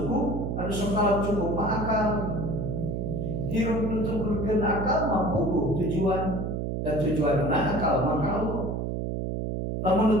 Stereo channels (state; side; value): noise; right; hum, 2 dB below the sound